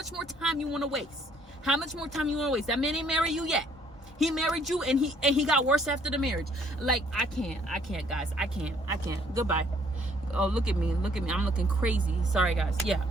time you want to waste? How much more time you want to waste? That man ain't married you yet. He married you, and he got worse after the marriage. Like, I can't, guys. I can't. Goodbye. Oh, look at me. I'm looking crazy. Sorry, guys. Yeah.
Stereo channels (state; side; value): normal; both; correlation 0.63